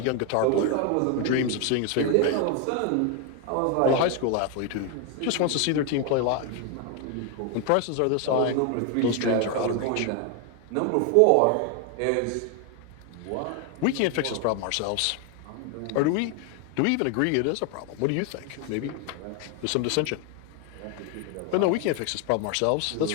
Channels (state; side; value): different; both; correlation 0.01